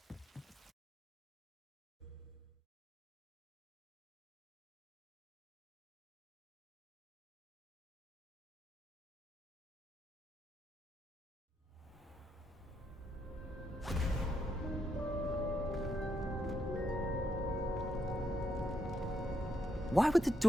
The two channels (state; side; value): normal; both; correlation 0.78